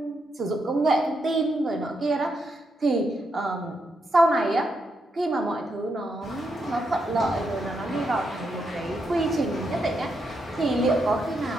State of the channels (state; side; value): normal; both; correlation 0.81